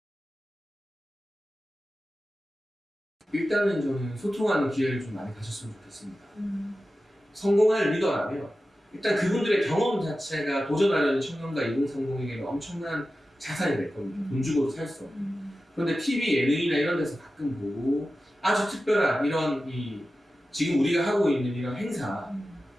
일단은 저는 소통하는 기회를 좀 많이 가졌으면 좋겠습니다. 성공할 리더라면 일단 그분들의 경험 자체가 도전하려는 청년과 2030에게는 엄청난 자산이 될 겁니다. 돈 주고도 살 수 없는. 그런데 TV, 예능이나 이런 데서 가끔 보고 아주 특별한 이런 지금 우리가 하고 있는 이런 행사,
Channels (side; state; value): both; normal; correlation 0.94